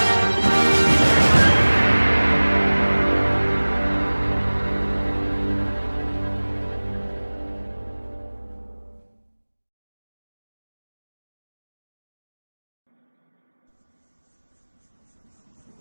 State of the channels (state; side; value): inverted; both; correlation -1.00